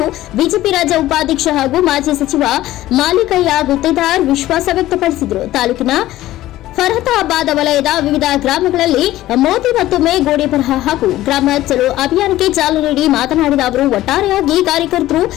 ಬಿಜೆಪಿ ರಾಜ್ಯ ಉಪಾಧ್ಯಕ್ಷ ಹಾಗೂ ಮಾಜಿ ಸಚಿವ ಮಾಲಿಕೆಯಾಗುತ್ತಿದ್ದಾರೆ ವಿಶ್ವಾಸ ವ್ಯಕ್ತಪಡಿಸಿದರು. ತಾಲೂಕಿನ ಫರತಾಬಾದ್ ವಲಯದ ವಿವಿಧ ಗ್ರಾಮಗಳಲ್ಲಿ ಮೋದಿ ಮತ್ತೊಮ್ಮೆ ಗೋಡೆ ಬರಹ ಹಾಗೂ ಗ್ರಾಮ ಚಲೋ ಅಭಿಯಾನಕ್ಕೆ ಚಾಲನೆ ನೀಡಿ ಮಾತನಾಡಿದ ಅವರು, ಒಟ್ಟಾರೆಯಾಗಿ ಕಾರ್ಯಕರ್ತರು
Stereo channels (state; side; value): quieter; right; 15.2 dB